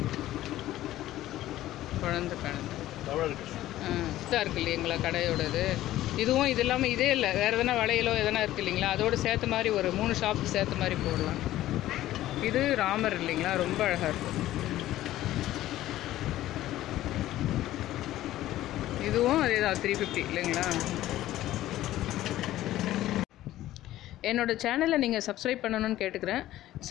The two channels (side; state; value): right; quieter; 14.5 dB